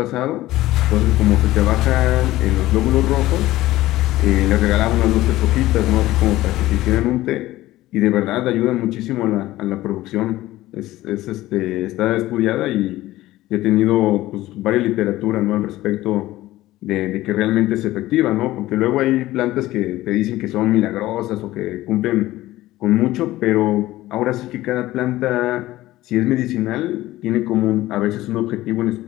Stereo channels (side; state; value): right; quieter; 16.4 dB